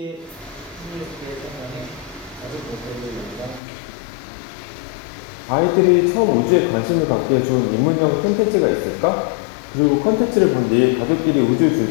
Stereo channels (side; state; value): right; drops out; at 3.6 s